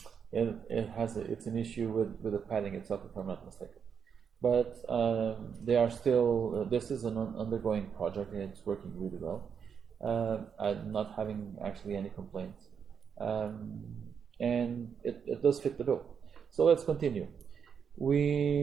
It's an issue with the padding itself, if I'm not mistaken. But they are still, this is an undergoing project and it's working really well. I'm not having actually any complaints. And it does fit the bill. So let's continue.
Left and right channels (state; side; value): quieter; left; 7.0 dB